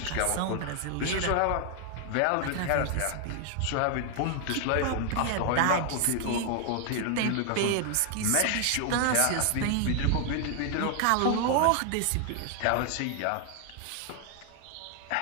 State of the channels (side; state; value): both; different; correlation 0.00